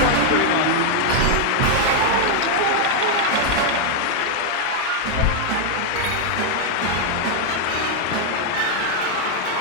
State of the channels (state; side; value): different; both; correlation 0.00